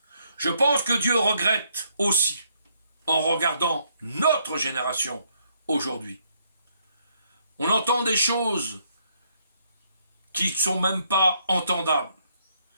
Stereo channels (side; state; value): both; inverted; correlation -0.72